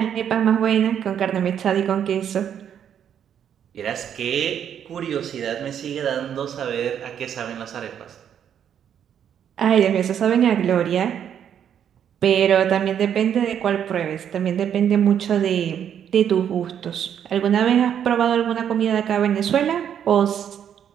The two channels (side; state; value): left; quieter; 9.0 dB